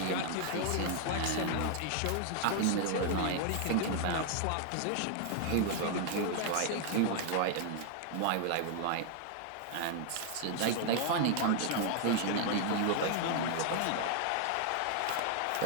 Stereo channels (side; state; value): both; different; correlation 0.00